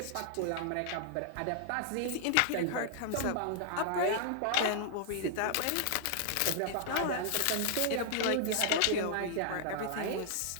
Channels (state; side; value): different; both; correlation -0.01